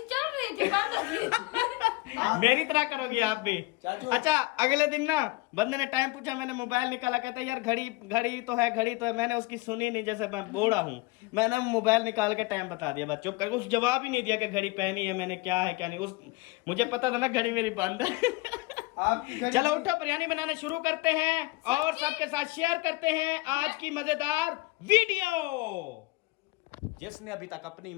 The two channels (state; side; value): quieter; right; 22.9 dB